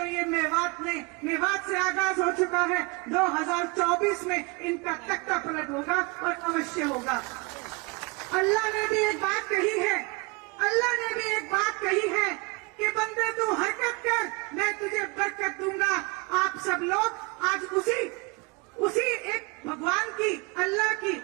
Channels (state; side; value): quieter; left; 28.4 dB